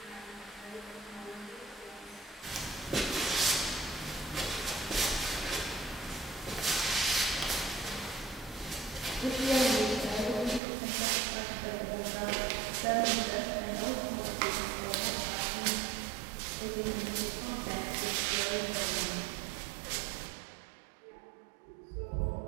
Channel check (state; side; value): drops out; left; at 10.6 s